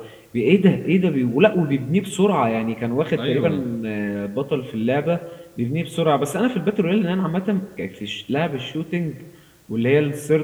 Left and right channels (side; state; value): both; identical; correlation 1.00